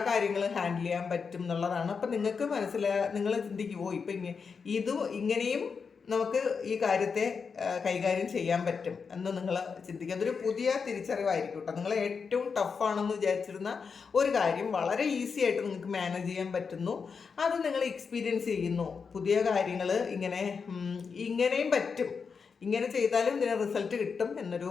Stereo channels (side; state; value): right; quieter; 5.6 dB